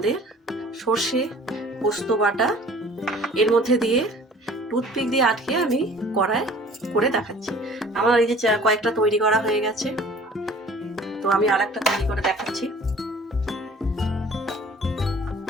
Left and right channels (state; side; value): normal; both; correlation 0.50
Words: সর্ষে পোস্ত বাটা এর মধ্যে দিয়ে টুথপিক দিয়ে আটকে আমি কড়ায় করে দেখাচ্ছি। আমার এই যে কয়েকটা তৈরি করা হয়ে গেছে, তো আমি আর একটা তৈরি করে দেখাচ্ছি।